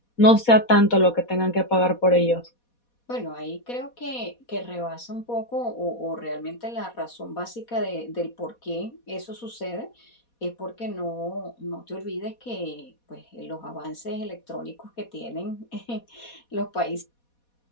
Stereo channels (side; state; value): right; late; 4.2 ms